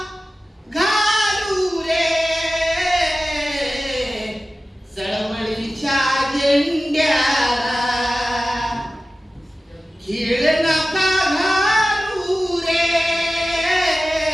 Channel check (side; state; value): both; normal; correlation 0.95